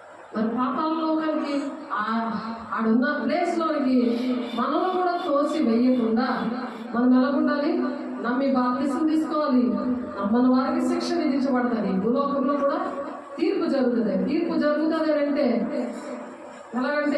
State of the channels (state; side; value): identical; both; correlation 1.00